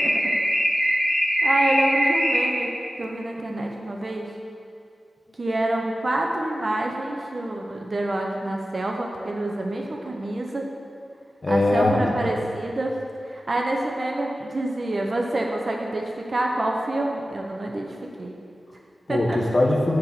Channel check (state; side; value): normal; both; correlation 0.94